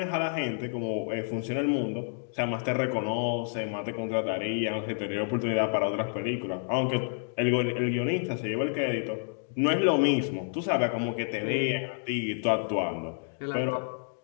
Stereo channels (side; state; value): right; silent; digital silence